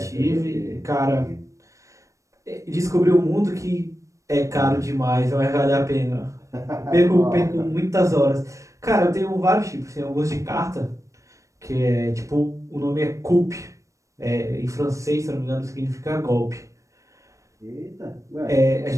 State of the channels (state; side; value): late; left; 0.15 ms